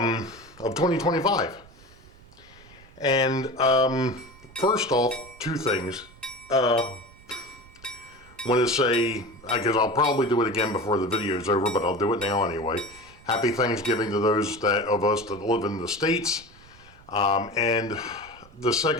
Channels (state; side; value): noise; right; rumble, 24 dB below the sound